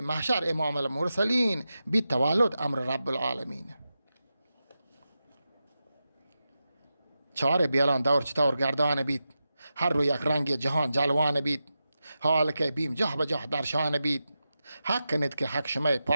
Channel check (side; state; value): both; inverted; correlation -0.91